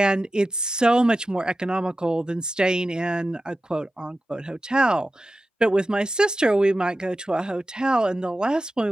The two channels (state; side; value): normal; both; correlation 0.93